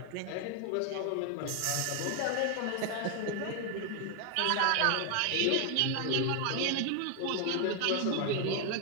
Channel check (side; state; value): both; different; correlation 0.00